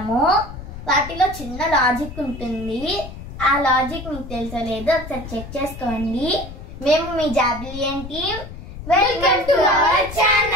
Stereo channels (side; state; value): left; noise; rumble, 12 dB below the sound